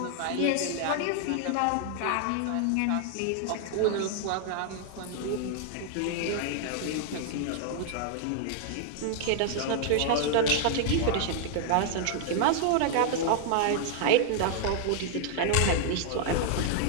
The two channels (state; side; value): different; both; correlation 0.00